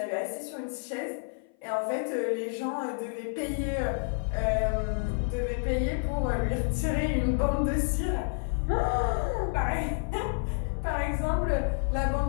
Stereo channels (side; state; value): right; silent; 56 dB below the other